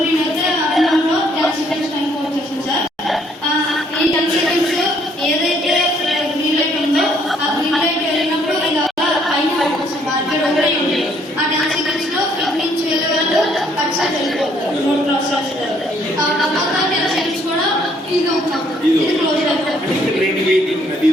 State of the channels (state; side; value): normal; both; correlation 0.66